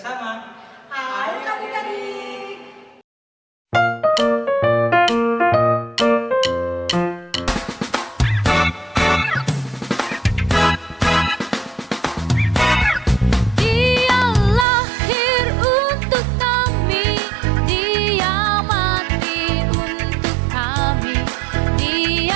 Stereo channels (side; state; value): left; drops out; at 14.7 s